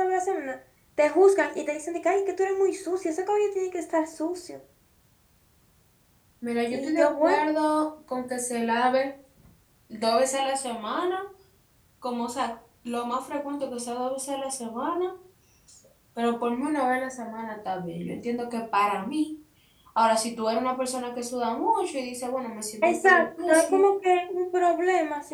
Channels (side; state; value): both; identical; correlation 1.00